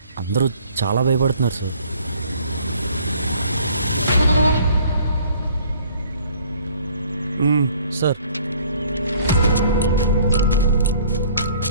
అందరూ చాలా భయపడుతున్నారు సార్. సార్,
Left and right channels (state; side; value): inverted; both; correlation -0.56